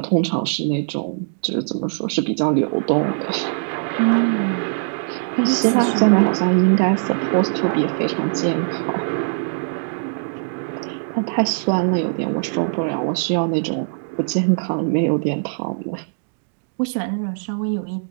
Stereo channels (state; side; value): silent; left; digital silence